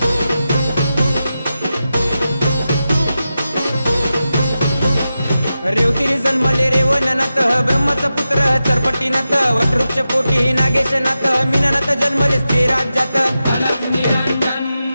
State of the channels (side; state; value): both; inverted; correlation -0.91